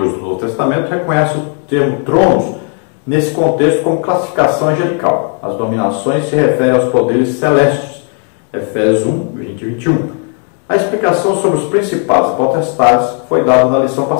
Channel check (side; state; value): right; quieter; 39.6 dB